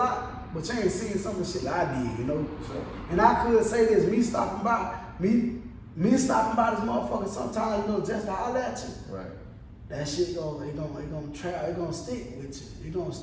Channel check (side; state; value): both; identical; correlation 1.00